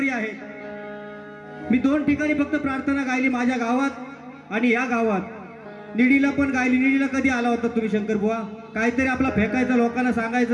आहेत, मी 2 ठिकाणी फक्त प्रार्थना गायली, माझ्या गावात आणि या गावात। निडीला पण गायली। निडीला कधी आला होता तुम्ही शंकर बुवा? काहीतरी आपला फेकायचं, लोकांना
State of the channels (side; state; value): both; identical; correlation 1.00